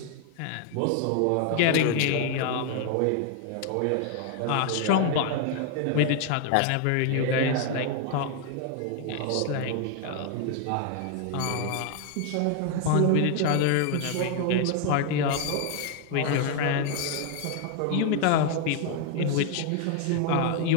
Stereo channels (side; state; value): both; different; correlation 0.00